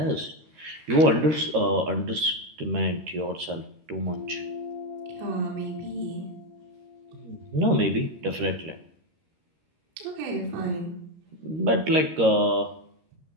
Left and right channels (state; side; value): late; left; 13 ms